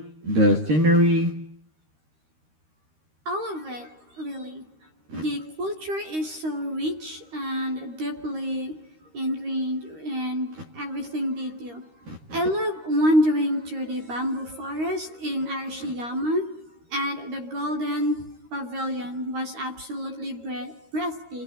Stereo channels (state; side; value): late; left; 13 ms